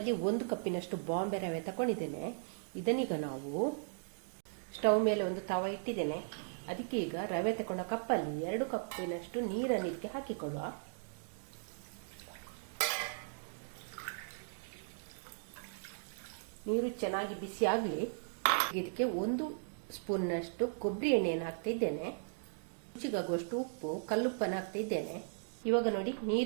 1 ಕಪ್ಪಿನಷ್ಟು ಬಾಂಬೆ ರವೆ ತಗೊಂಡಿದ್ದೇನೆ. ಇದನ್ನೀಗ ನಾವು ಸ್ಟವ್ ಮೇಲೆ ಒಂದು ತವ ಇಟ್ಟಿದ್ದೇನೆ. ಅದಕ್ಕೆ ಈಗ ರವೆ ತಗೊಂಡ ಕಪ್ಪಲ್ಲಿ 2 ಕಪ್ಪಿನಷ್ಟು ನೀರನ್ನು ಇದಕ್ಕೆ ಹಾಕಿಕೊಳ್ಳುವ. ನೀರು ಚೆನ್ನಾಗಿ ಬಿಸಿ ಆಗಲಿ. ಇದಕ್ಕೆ 1 ಸ್ಪೂನ್ನಷ್ಟು ಕೊಬ್ಬರಿ ಎಣ್ಣೆಯನ್ನು ಹಾಕ್ತಾ ಇದ್ದೇನೆ. ರುಚಿಗಾಗುವಷ್ಟು ಉಪ್ಪು, ಕಲ್ಲುಪ್ಪನ್ನು ಹಾಕ್ತಾ ಇದ್ದೇನೆ. ಇವಾಗ ನೋಡಿ,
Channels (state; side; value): silent; left; digital silence